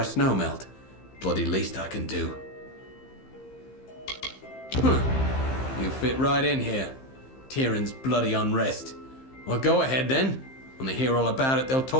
Snowmelt. Bloody least I can do. You fit right in here. Tyrion's bloody unrest. Well, go ahead then. When they hear all about it, they'll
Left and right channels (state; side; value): late; right; 15 ms